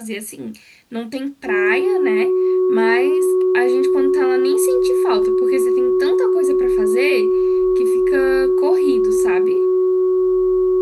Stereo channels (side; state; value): both; identical; correlation 1.00